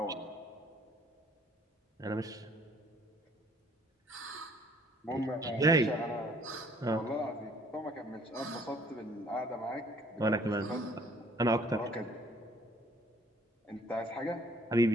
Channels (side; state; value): both; normal; correlation 0.59